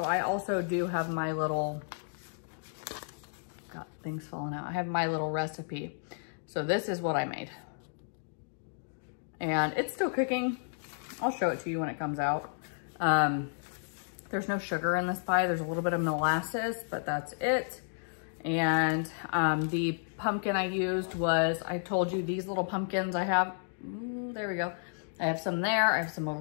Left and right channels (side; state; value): right; silent; digital silence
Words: I also do have my little, got things falling out. I have my little recipe. So this is what I made. And it's still cooking. I'll show it to you when it comes out. There's no sugar in this pie. There's a little bit of molasses, but that's it. And the pumpkin I used was, I told you these little pumpkins I have. Ooh, there we go. I have some there. I have some